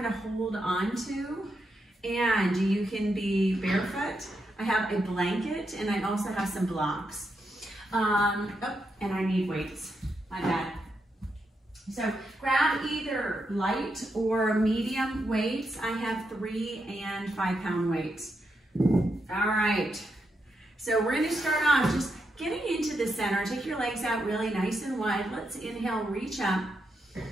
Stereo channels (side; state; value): both; normal; correlation 0.83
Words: of hold on to. And you can be barefoot. I have a blanket and I also have some blocks. And I need weights, my bad. So grab either light or medium weights. I have 3 and 5 pound weights. All right, so we're gonna start off just getting into the center. Take your legs out really nice and wide. Let's inhale, reach up,